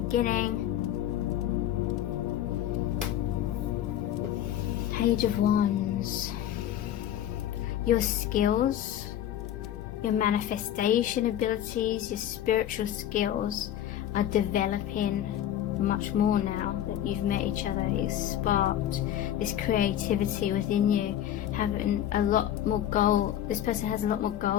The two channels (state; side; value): quieter; right; 11.4 dB